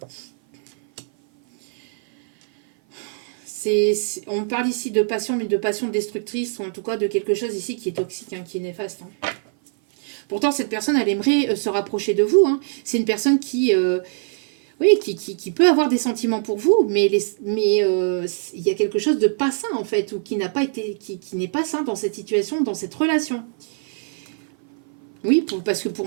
on parle ici de passion, mais de passion destructrice, ou en tout cas de quelque chose ici qui est toxique, hein, qui est néfaste. Hein. Pourtant, cette personne, elle aimerait se rapprocher de vous. Hein. C'est une personne qui peut avoir des sentiments pour vous, mais il y a quelque chose de pas sain, en fait, ou qui n'est pas sain dans cette situation, dans cette relation. Oui, parce que pour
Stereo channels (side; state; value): left; silent; 56 dB below the other